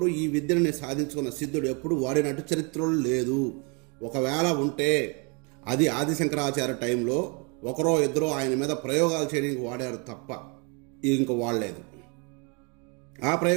ఈ విద్యని సాధించుకున్న సిద్ధుడు ఎప్పుడు వాడినట్టు చరిత్రలో లేదు. ఒకవేళ ఉంటే అది ఆదిశంకరాచార్య టైంలో ఒకరో ఇద్దరో ఆయన మీద ప్రయోగాలు చేయడానికి వాడారు తప్ప ఇంక వాడలేదు. ఆ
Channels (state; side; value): quieter; left; 32.7 dB